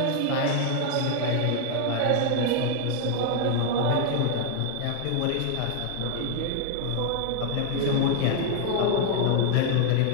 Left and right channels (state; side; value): different; both; correlation 0.00